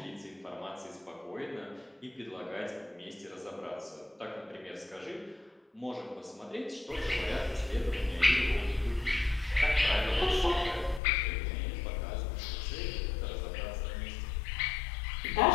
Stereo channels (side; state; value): right; drops out; at 11.0 s